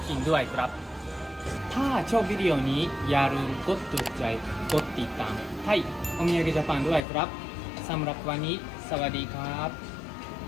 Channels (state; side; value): drops out; right; at 7.0 s